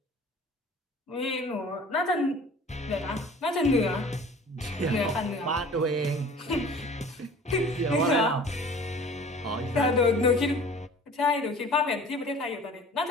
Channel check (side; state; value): both; normal; correlation 0.46